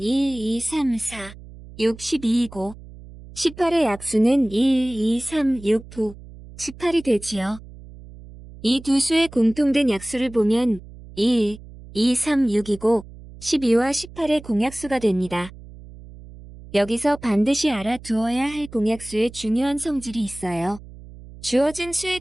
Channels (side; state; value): right; noise; hum, 18 dB below the sound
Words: 2, 3, 4, 6, 12이고 18의 약수는 1, 2, 3, 6, 9, 18이 되지요. 이 두 수의 공통된 약수를 보면 1, 2, 3, 6이고 12와 18의 공약수가 됩니다. 여기서 반드시 알아두어야 할 공약수의 중요한 성질이 있어요. 주어진 수에